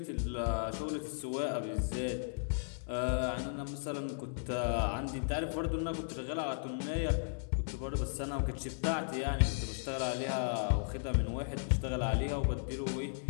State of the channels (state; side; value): silent; right; digital silence